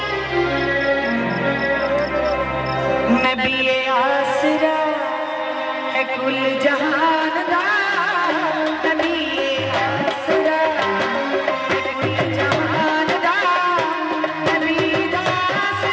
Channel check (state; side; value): identical; both; correlation 1.00